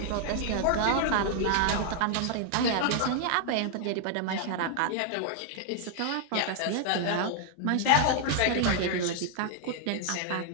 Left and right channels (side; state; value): both; different; correlation 0.00